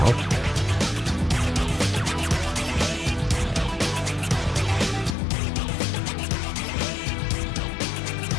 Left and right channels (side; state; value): right; drops out; at 5.2 s